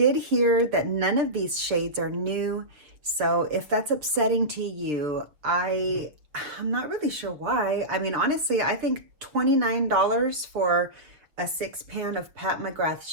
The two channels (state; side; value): late; left; 6.5 ms